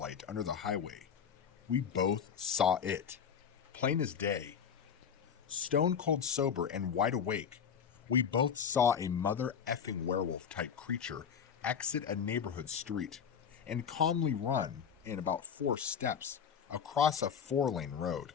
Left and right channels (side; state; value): right; quieter; 7.4 dB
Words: under the highway, we both saw it, plain as day. Stone cold sober and wide awake, we both saw a mother effing werewolf type creature exit a neighborhood street and calmly run in about 4 steps across a 4-lane road.